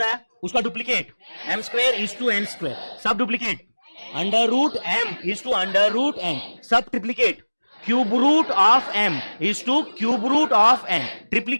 उसका डुप्लीकेट m²:n², सब duplicate. √m:√n, sub triplicate. Cube root of m = cube root of n,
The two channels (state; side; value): inverted; both; correlation -1.00